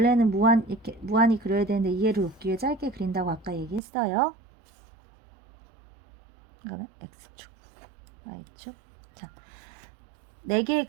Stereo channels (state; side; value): drops out; left; at 3.8 s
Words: 이렇게 무한히 그려야 되는데 이해를 돕기 위해 짧게 그린다고 아까 얘기했어요. 이거는 x축, y축. 자, 4개의